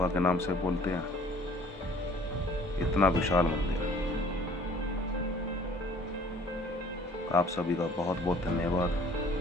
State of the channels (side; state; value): both; normal; correlation 0.53